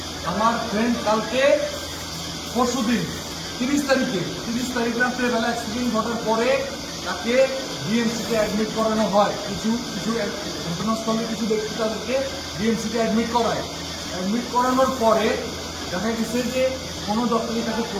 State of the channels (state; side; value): identical; both; correlation 1.00